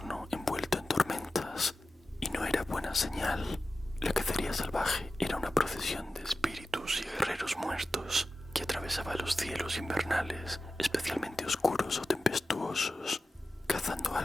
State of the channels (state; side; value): normal; both; correlation 0.94